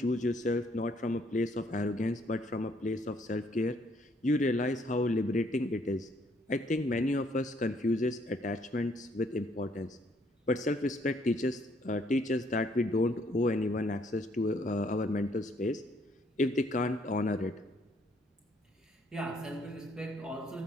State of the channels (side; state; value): both; normal; correlation 0.67